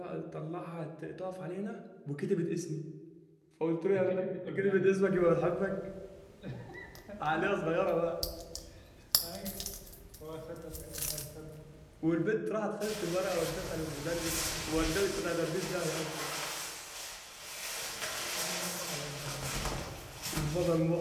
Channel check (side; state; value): both; identical; correlation 1.00